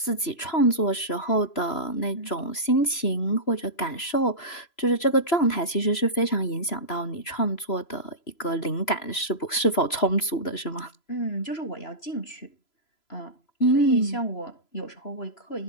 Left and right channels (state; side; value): late; right; 3.0 ms